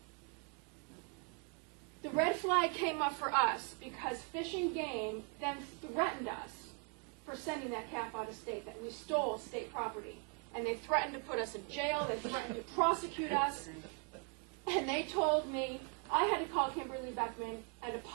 The red flag came up for us because Fish and Game then threatened us for sending that calf out of state, that we stole state property. And they threatened to put us in jail, they threatened to prosecute us. And they told me I had to call Kimberly Beckman and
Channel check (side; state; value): left; quieter; 38.3 dB